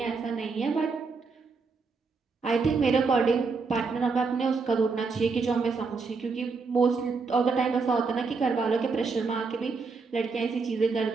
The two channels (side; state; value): left; quieter; 4.5 dB